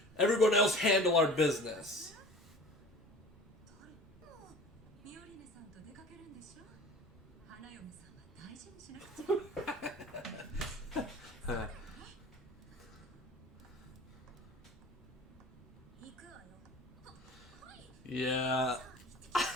Everyone else handle our business. Yeah.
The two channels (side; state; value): both; normal; correlation 0.41